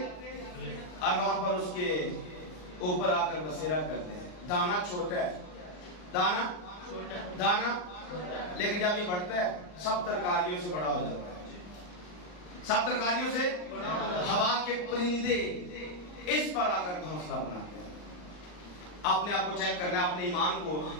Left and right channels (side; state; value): right; late; 39 ms